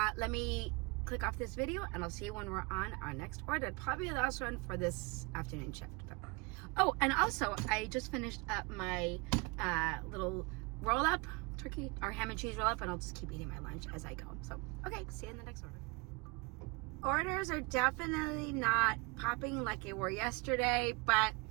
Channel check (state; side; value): quieter; left; 27.9 dB